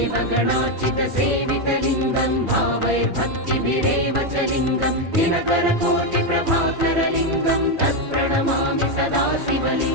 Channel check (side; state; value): left; late; 2.4 ms